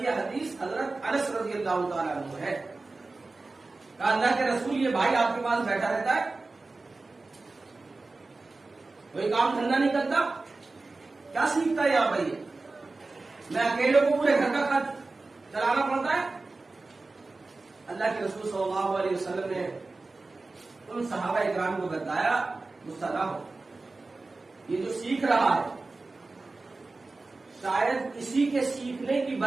حدیث حضرت انس رضی اللہ تعالیٰ عنہ ہے، کہا اللہ کے رسول یہ بھائی آپ کے پاس بیٹھا رہتا ہے، کوئی کام دھندا نہیں کرتا، کیا سیکھتا ہے یہاں بھائی؟ میں اکیلے کو پورے گھر کا خرچ چلانا پڑتا ہے۔ اللہ کے رسول صلی اللہ علیہ وسلم نے ان صحابہ اکرام کو بتایا، غصہ نہ ہو، یہ جو سیکھ رہا ہے شاید اسی کے سیکھنے کی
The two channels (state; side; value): quieter; left; 3.5 dB